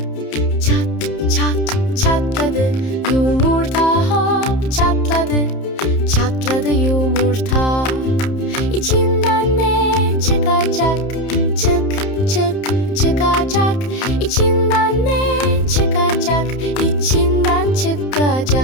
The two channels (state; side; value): late; right; 31 ms